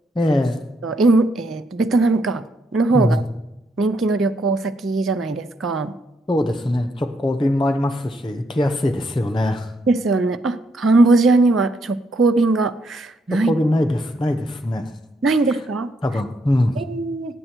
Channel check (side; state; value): both; normal; correlation 0.76